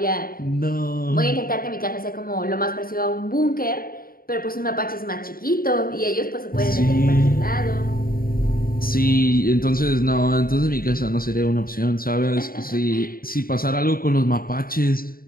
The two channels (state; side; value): late; right; 0.42 ms